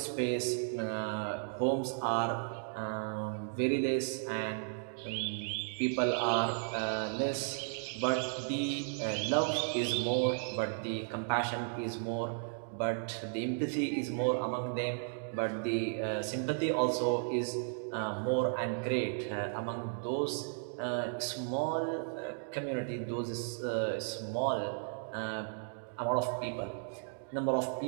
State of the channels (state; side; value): silent; left; digital silence